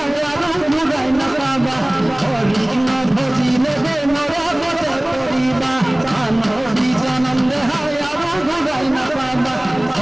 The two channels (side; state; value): right; noise; hum, 30 dB below the sound